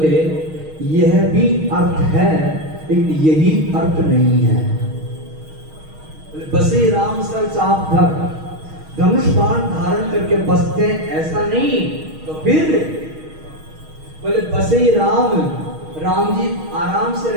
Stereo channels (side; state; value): left; late; 6.4 ms